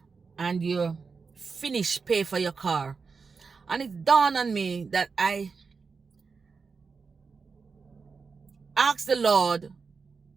and you finish pay for your car, and it dawned on me that I asked the Lord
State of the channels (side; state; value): left; quieter; 5.0 dB